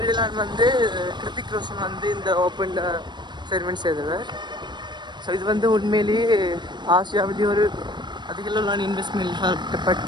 வந்து கிருத்திக் ரோஷன் வந்து இந்த ஓப்பன் செரிமனி செய்தவர். ஸோ இது வந்து உண்மையிலேயே ஆசியாவிலேயே ஒரு அதிக அளவிலான இன்வெஸ்ட்மெண்ட்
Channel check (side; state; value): left; late; 0.22 ms